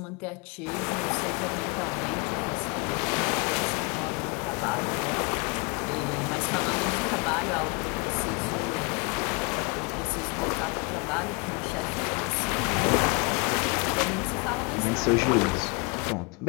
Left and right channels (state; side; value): quieter; right; 31.1 dB